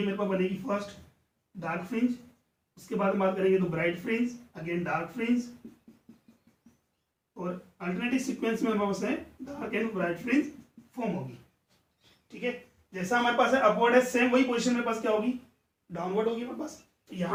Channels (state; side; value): identical; both; correlation 1.00